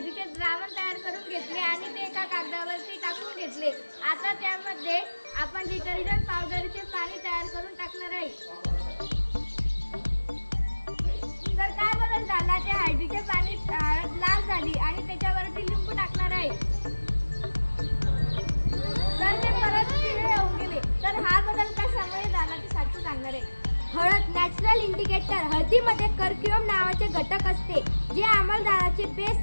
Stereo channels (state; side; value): inverted; both; correlation -1.00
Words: द्रावण तयार करून घेतले आणि ते एका कागदावरती टाकून घेतले। आता त्यामध्ये आपण डिटर्जंट पावडरचे पाणी तयार करून टाकणार आहे। तर काय बदल झाला, ते हळदीचे पाणी लाल झाली आणि त्याच्यावरती लिंबू टाकणार आहे तर ते परत पिवळे होऊन गेले। तर हा बदल कशामुळे झाला ते साक्षी सांगणार आहे। हळद नॅचरल इंडिकेटर। हळदीमध्ये कर्क्युम नावाचे घटक असते जे आम्लदाराचे बेस